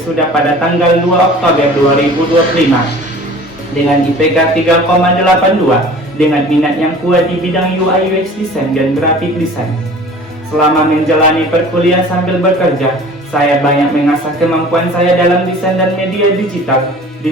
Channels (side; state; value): both; normal; correlation 0.44